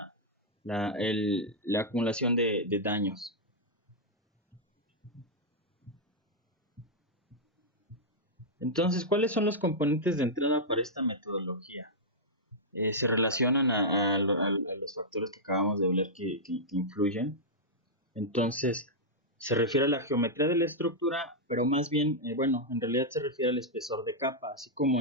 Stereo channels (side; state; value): both; normal; correlation -0.07